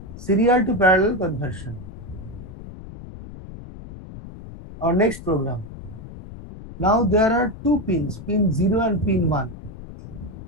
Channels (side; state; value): left; noise; rumble, 14 dB below the sound